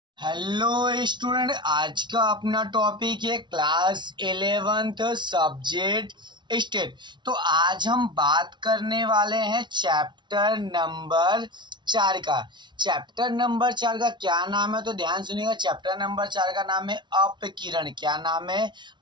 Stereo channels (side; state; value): left; late; 0.22 ms